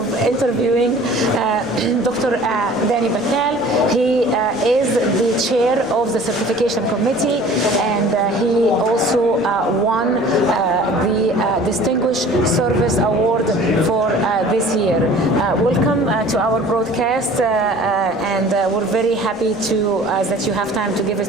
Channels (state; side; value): noise; right; rumble, 29 dB below the sound